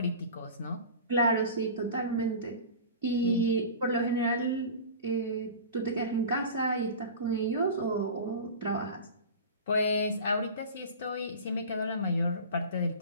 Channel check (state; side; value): inverted; both; correlation -0.35